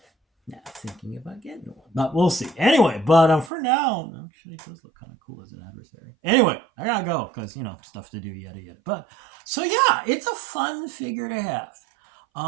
yeah, thinking about getting one, but we'll see. Anyway, but for now, actually, it does look kind of cool as an adversary. Anyway, I gotta go because stuff to do, yada yada. But so yeah, it's a fun figure to have.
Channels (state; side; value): drops out; left; at 3.5 s